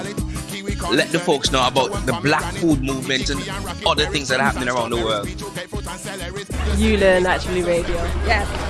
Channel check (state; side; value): identical; both; correlation 1.00